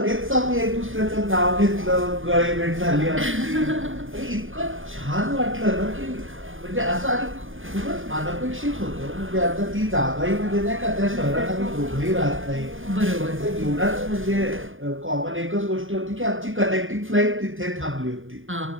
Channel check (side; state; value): left; late; 0.58 ms